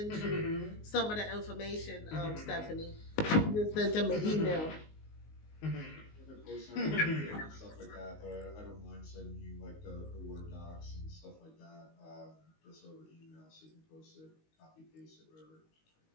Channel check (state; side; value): late; right; 19 ms